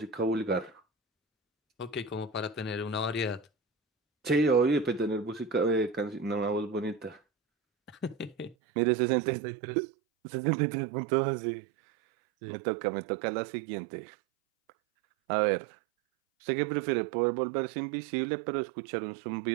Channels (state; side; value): drops out; left; at 8.6 s